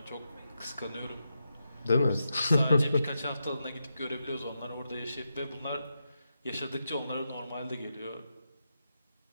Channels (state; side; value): inverted; both; correlation -0.87